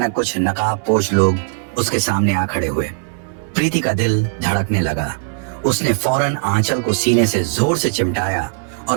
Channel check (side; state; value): left; silent; digital silence